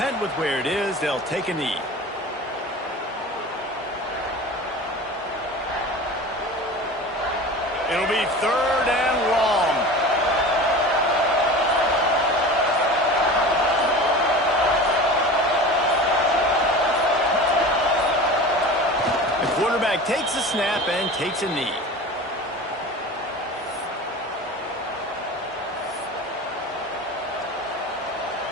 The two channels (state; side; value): normal; both; correlation 0.35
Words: with where it is. They'll take a knee. It'll be 3rd and long. The quarterback takes a snap and takes a knee.